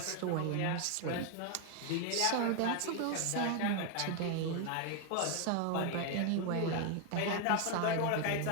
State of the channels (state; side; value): different; both; correlation 0.01